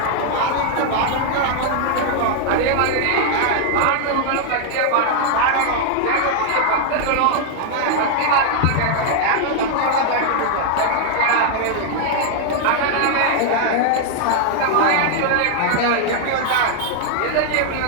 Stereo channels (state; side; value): different; both; correlation 0.00